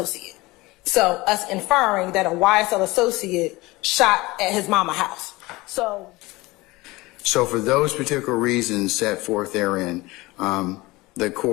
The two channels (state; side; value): quieter; right; 21.2 dB